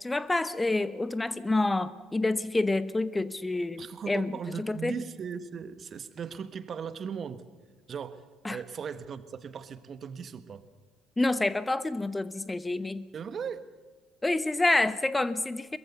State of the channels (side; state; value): both; normal; correlation 0.95